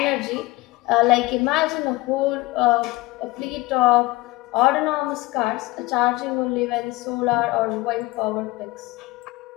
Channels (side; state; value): right; quieter; 20.4 dB